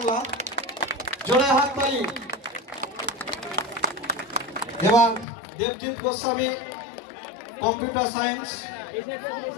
জোরে হাত তালি। এবার দেবজিৎ গোস্বামী কম্পিউটার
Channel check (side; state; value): right; drops out; at 5.2 s